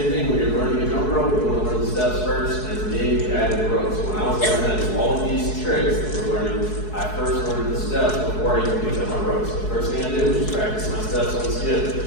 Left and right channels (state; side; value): late; right; 4.7 ms